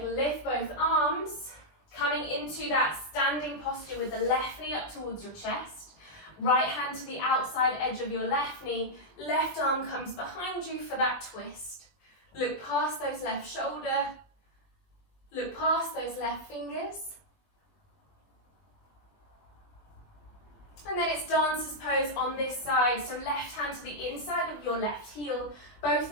lift both arms, coming into that standing posture with the left knee up towards your chest. Right hand to the outside edge of your left knee, left arm comes behind you for that twist. Look past those left shoulder, look past those left fingers. And then it's dancer's pose on this side, so left hand to the inside of your left heel,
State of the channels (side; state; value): right; late; 20 ms